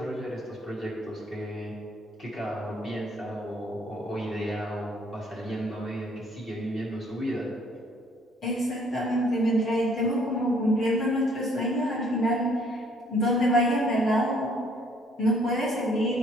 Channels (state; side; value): normal; both; correlation 0.62